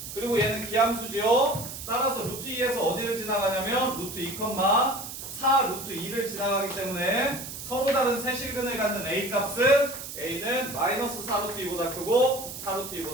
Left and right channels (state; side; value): noise; right; hiss, 9 dB below the sound